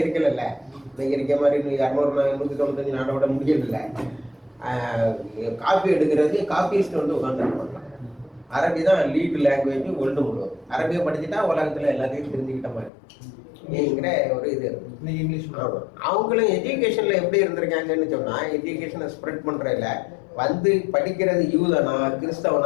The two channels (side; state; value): right; drops out; at 12.9 s